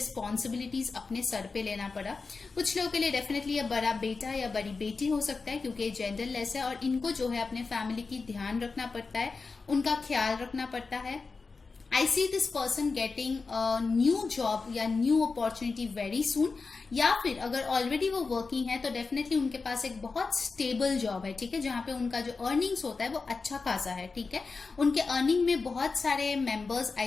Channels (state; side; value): quieter; right; 4.3 dB